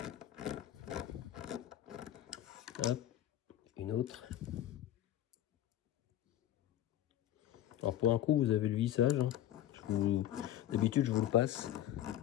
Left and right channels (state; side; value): quieter; right; 12.4 dB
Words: Hop. Une autre. Alors pour un coup, vous avez le vissage. Hein. D'habitude, je vous le passe.